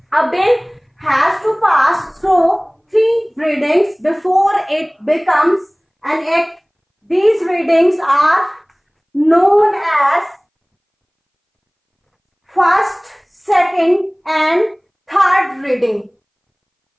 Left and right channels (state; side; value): identical; both; correlation 1.00